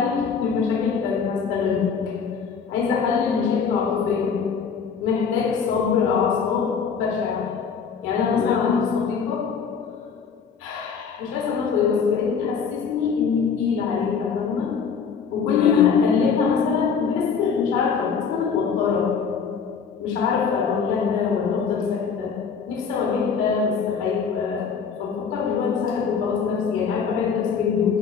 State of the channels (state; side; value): quieter; right; 6.2 dB